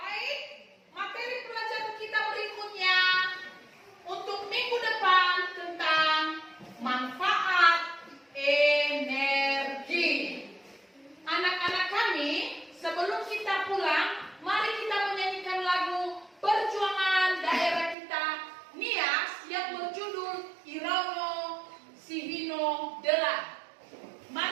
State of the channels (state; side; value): drops out; left; at 17.9 s